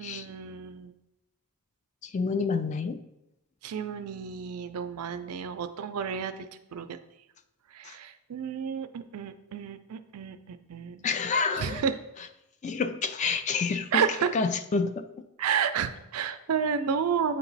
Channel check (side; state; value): both; normal; correlation 0.03